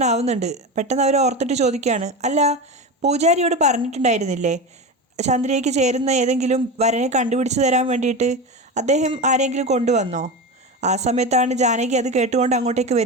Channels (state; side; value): normal; both; correlation 0.23